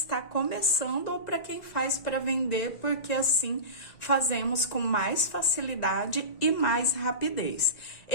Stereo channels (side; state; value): right; late; 1.9 ms